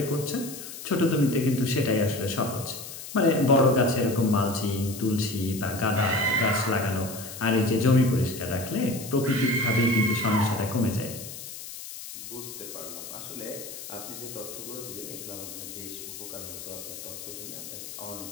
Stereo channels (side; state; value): left; noise; hiss, 11 dB below the sound